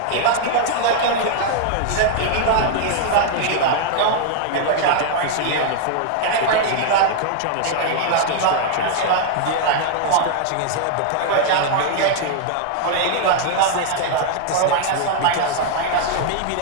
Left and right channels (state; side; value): different; both; correlation 0.00